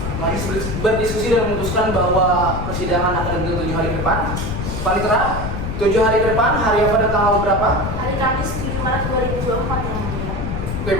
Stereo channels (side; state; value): left; noise; rumble, 4 dB below the sound